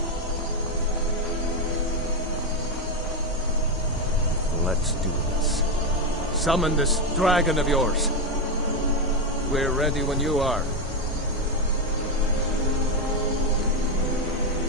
Let's do this. Summon this dragon of yours. We're ready when you are.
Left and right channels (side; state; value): both; normal; correlation 0.08